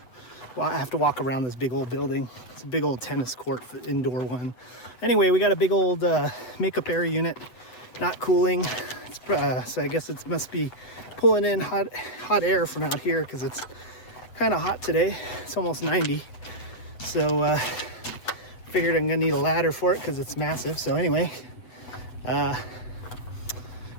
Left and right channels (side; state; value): right; late; 8.0 ms